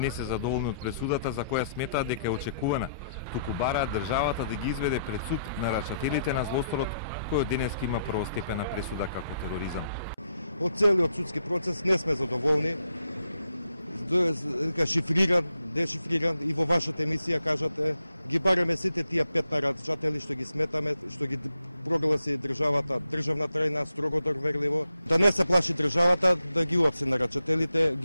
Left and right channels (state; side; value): inverted; both; correlation -0.78